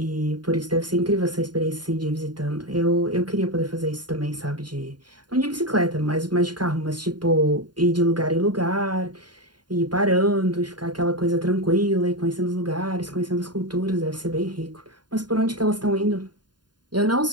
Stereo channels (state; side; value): late; left; 0.70 ms